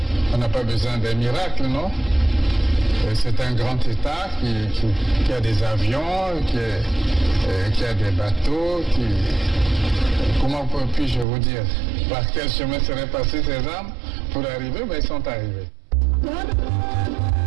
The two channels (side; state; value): left; drops out; at 11.2 s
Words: n'a pas besoin d'un miracle, non? C'est un grand État qui a des avions, qui a des bateaux, comment puis-je vous dire? Par quel chemin seraient passées ces armes pour arriver? Ben, ils sont arrivés.